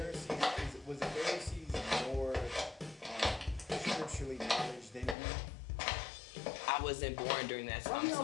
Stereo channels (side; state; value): right; drops out; at 5.2 s